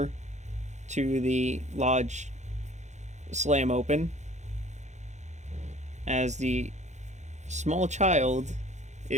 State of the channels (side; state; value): left; late; 0.34 ms